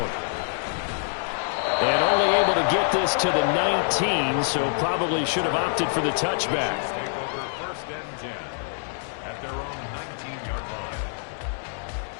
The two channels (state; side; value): silent; right; digital silence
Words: And only able to get this to the 19, so probably should have opted for the touchback.